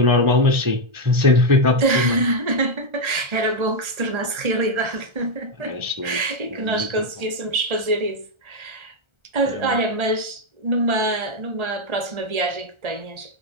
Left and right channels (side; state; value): left; late; 1.3 ms